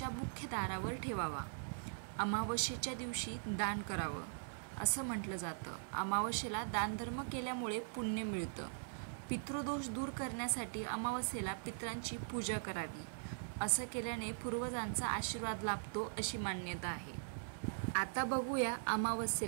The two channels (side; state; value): left; silent; 50 dB below the other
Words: मुख्य दारावर ठेवावा। अमावस्येच्या दिवशी दान करावं असं म्हटलं जातं। अमावस्येला दानधर्म केल्यामुळे पुण्य मिळतं। पितृदोष दूर करण्यासाठी अमावस्येला पितरांची पूजा करावी। असं केल्याने पूर्वजांचा आशीर्वाद लाभतो अशी मान्यता आहे। आता बघूया